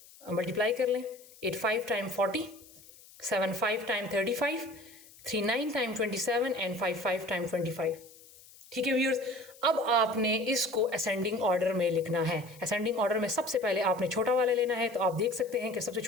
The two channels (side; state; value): left; noise; hiss, 23 dB below the sound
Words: मल्टीप्लाई कर लें, 8 5 time 40, 7 5 time 35, 3 9 time 27 and 5 5 time 25। ठीक है व्यूअर्स, अब आपने इसको असेंडिंग ऑर्डर में लिखना है। असेंडिंग ऑर्डर में सबसे पहले आपने छोटा वाला लेना है, तो आप देख सकते हैं कि सबसे